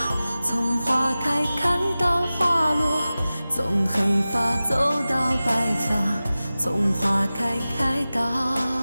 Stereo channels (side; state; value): both; inverted; correlation -0.96